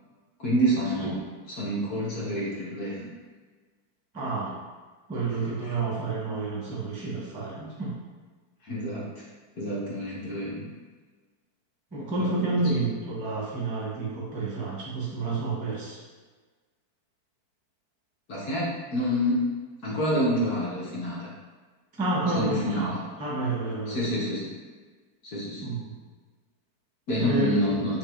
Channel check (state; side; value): late; right; 4.5 ms